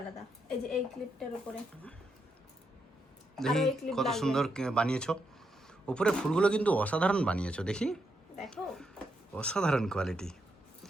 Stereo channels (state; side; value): normal; both; correlation 0.80